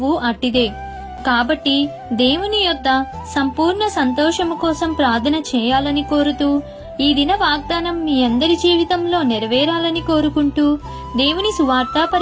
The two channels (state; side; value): identical; both; correlation 1.00